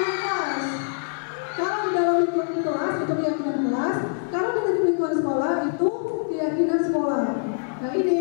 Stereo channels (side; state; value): right; silent; 62 dB below the other